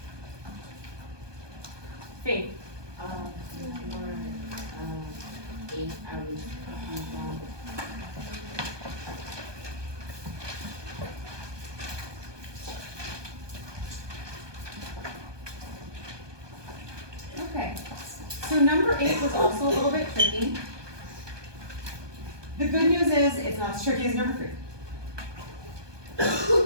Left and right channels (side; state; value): left; late; 1.2 ms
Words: Faith. Number 8, I was confused on. Okay, so number 8 was also a little bit tricky. The good news is it's not as tricky as number 3.